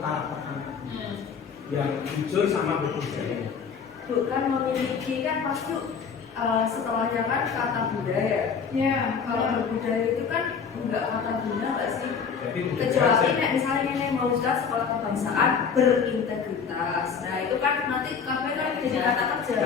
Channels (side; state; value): right; quieter; 6.2 dB